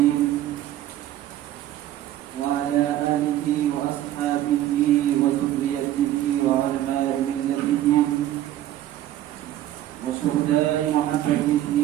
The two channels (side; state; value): left; quieter; 13.1 dB